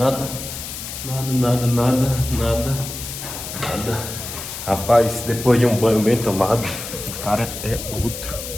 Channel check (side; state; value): left; noise; hiss, 8 dB below the sound